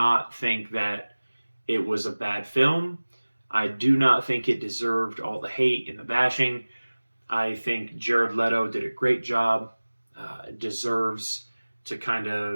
think that it was a bad film. I do not think it deserved all the hate and the bashing. I think Jared Leto did a great job. Deserves to kind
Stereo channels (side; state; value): both; inverted; correlation -1.00